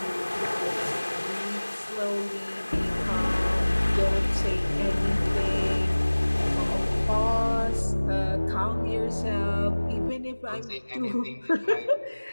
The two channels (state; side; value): inverted; both; correlation -1.00